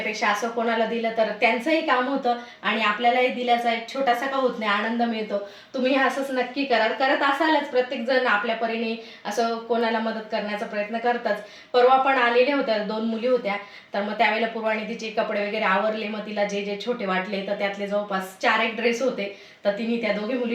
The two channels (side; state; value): both; identical; correlation 1.00